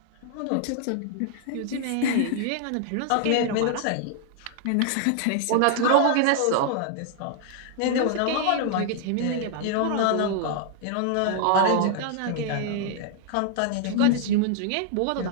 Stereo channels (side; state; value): both; different; correlation 0.00